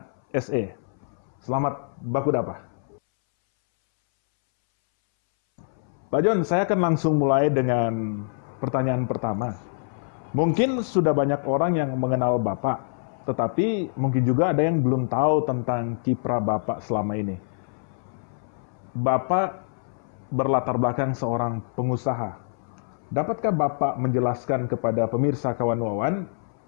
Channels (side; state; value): right; silent; 61 dB below the other